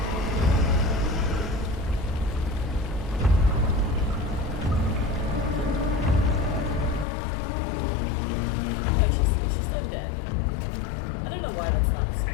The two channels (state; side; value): drops out; right; at 7.1 s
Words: Oh, she's still dead. I don't know why that's not the same.